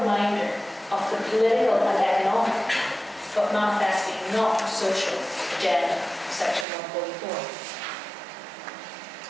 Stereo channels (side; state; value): left; drops out; at 6.7 s